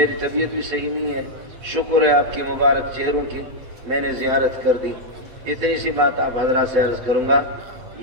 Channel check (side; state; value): left; late; 8.2 ms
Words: طبیعت بھی صحیح نہیں ہے. شکر ہے آپ کے مبارک چہروں کی میں نے زیارت کر دی. اتنی سی بات آپ حضرات سے عرض کروں گا.